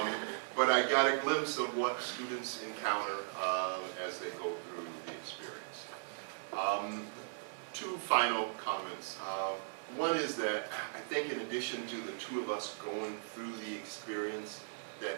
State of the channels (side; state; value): left; silent; digital silence